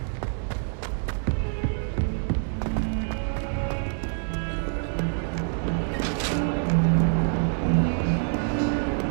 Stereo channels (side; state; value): left; silent; 59 dB below the other